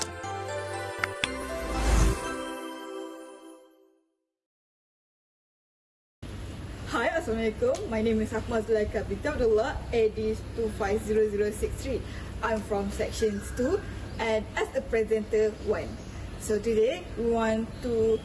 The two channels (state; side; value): identical; both; correlation 1.00